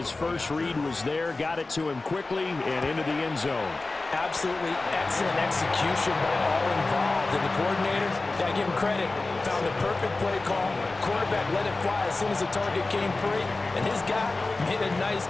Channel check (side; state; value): right; quieter; 3.3 dB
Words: first read was there, got it to him quickly, and into the end zone. Absolutely excellent execution by all involved. And the coordinator, got to give him credit, found the perfect play call. Quarterback let it fly as soon as the target came free. And his guy made a nice